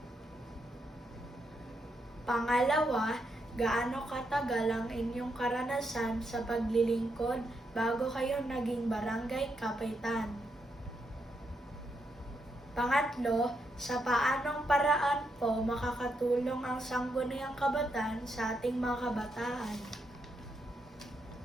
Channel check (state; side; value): normal; both; correlation 0.81